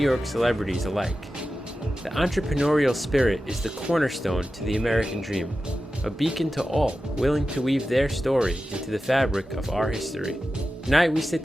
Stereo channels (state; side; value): normal; both; correlation 0.93